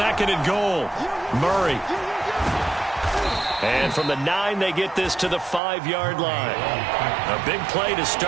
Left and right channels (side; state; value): left; drops out; at 5.6 s